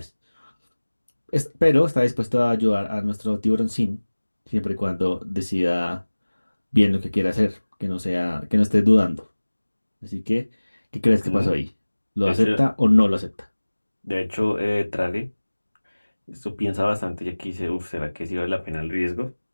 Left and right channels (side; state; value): both; inverted; correlation -1.00